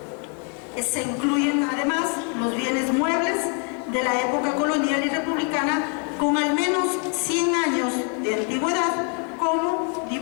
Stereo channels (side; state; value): right; quieter; 39.5 dB